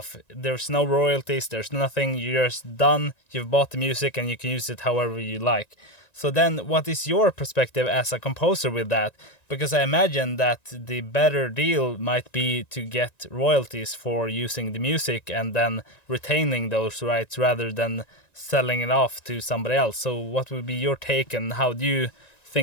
There's no royalties, there's nothing, you're just done, you've bought the music and you can use it however you like. So then what is your perspective as a composer with that? Because I imagine that the better deal might be to get royalties for using the music and then retaining those rights rather than selling it off to somebody else. So what would be your take and how do you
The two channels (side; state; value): right; late; 1.9 ms